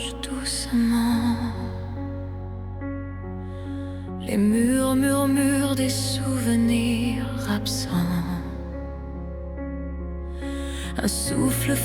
doucement. Les murs murmurent des souvenirs absents. Un souffle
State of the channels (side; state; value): both; identical; correlation 1.00